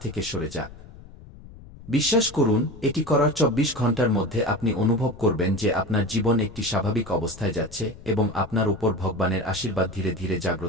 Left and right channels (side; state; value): left; noise; rumble, 18 dB below the sound